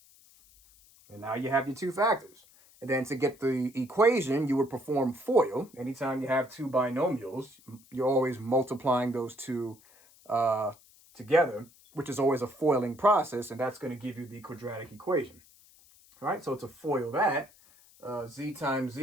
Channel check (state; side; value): noise; left; hiss, 27 dB below the sound